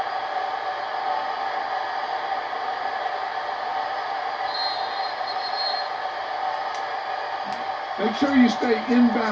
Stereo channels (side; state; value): both; identical; correlation 1.00